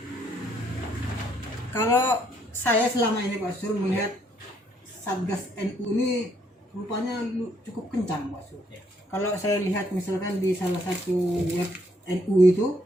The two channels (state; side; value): normal; both; correlation 0.70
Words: kalau saya selama ini Pak Sur melihat Satgas NU ini rupanya cukup kencang Pak Sur. Ya. Kalau saya lihat misalkan di salah satu web NU itu